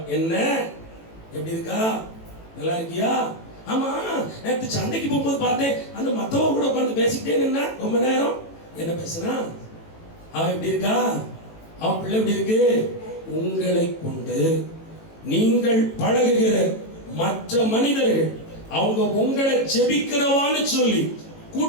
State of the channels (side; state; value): right; late; 18 ms